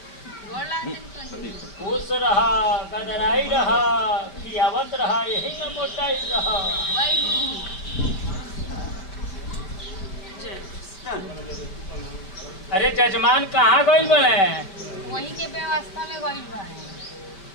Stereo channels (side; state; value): right; late; 5.3 ms